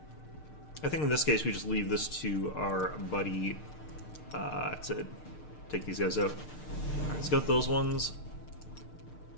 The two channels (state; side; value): late; right; 6.6 ms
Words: I think in this case we just leave this to our buddy to take these guys out. Alright, let's go with those ones.